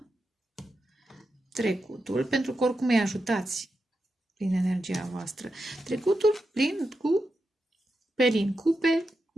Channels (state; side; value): normal; both; correlation 0.88